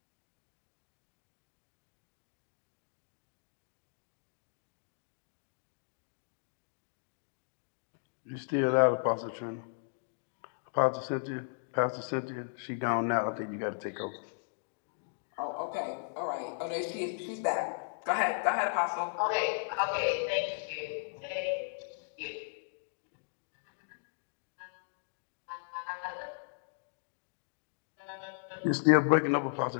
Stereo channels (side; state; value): right; silent; digital silence